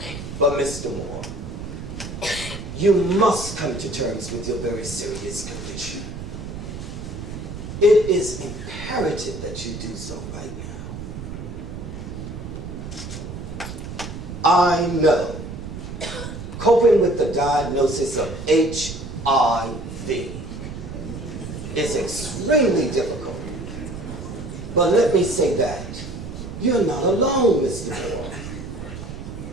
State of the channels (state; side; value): noise; right; rumble, 9 dB below the sound